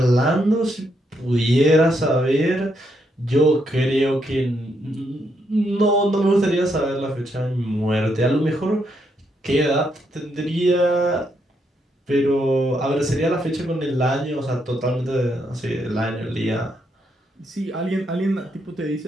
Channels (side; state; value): both; normal; correlation 0.77